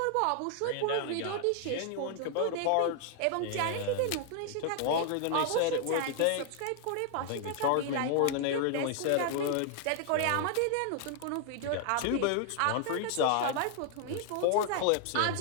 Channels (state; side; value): different; both; correlation 0.00